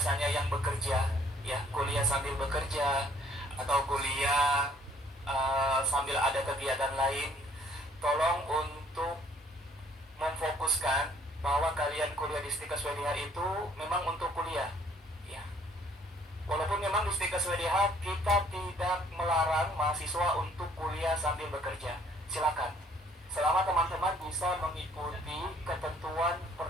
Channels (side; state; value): both; normal; correlation 0.60